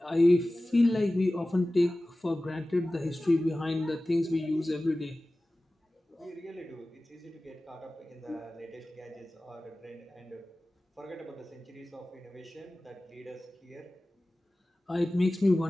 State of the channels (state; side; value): normal; both; correlation 0.97